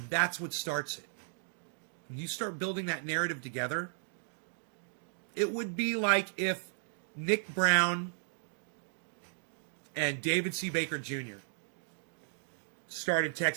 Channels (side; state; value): left; silent; digital silence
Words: that's what starts it. When you start building that narrative together, it would be like if Nick Brown and David C. Baker Jr. started